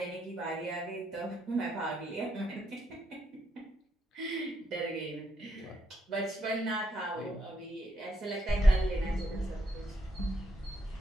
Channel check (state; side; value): normal; both; correlation 0.77